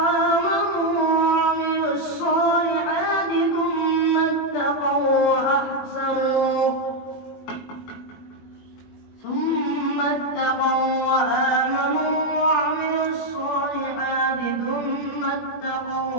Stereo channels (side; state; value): right; late; 20 ms